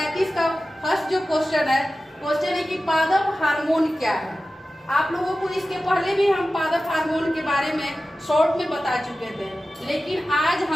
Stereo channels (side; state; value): both; normal; correlation 0.95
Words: का फर्स्ट जो क्वेश्चन है कि पादप हार्मोन क्या है। आप लोगों को इसके पहले भी हम पादप हार्मोन के बारे में शॉर्ट में बता चुके थे, लेकिन आज